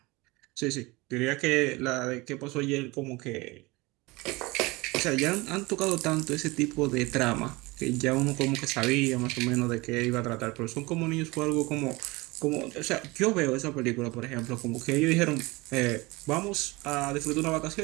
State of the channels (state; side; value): quieter; left; 23.1 dB